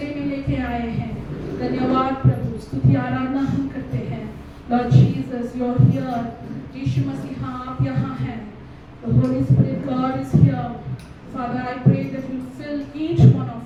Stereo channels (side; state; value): both; identical; correlation 1.00